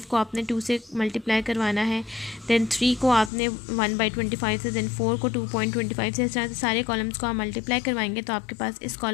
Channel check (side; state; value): right; drops out; at 3.3 s